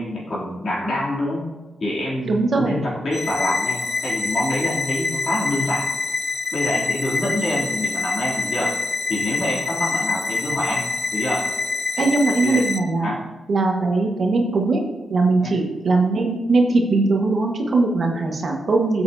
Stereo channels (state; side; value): normal; both; correlation 0.83